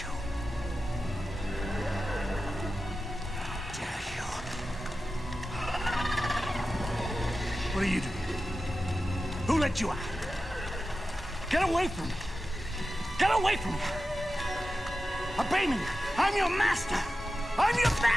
How dare you? What are you doing? Who let you out? Get away from me! Get away from me! Obey me! I'm your master! I'm your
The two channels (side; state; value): both; normal; correlation 0.93